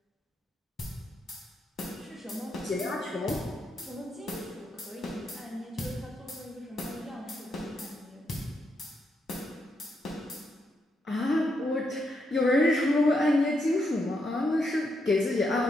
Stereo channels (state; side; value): normal; both; correlation 0.80